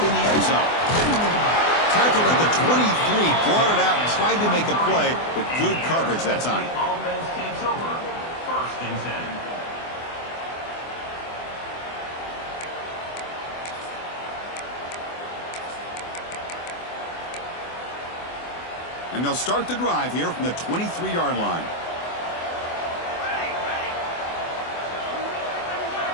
in the end zone. Tackled at the 23, brought it out, tried to make a play, but good coverage that time. Offense takes over. First and 10. And they'll start the drive here from the 23-yard line.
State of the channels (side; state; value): right; late; 24 ms